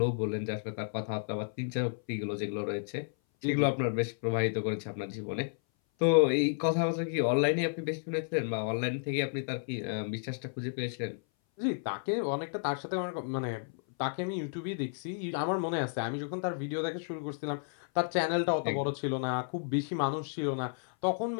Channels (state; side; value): silent; right; 56 dB below the other